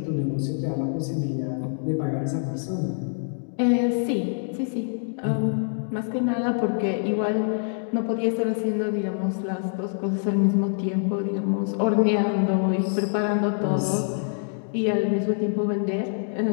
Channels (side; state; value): right; silent; digital silence